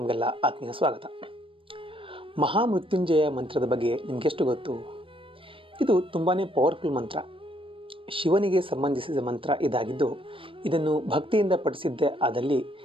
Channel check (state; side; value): late; left; 0.25 ms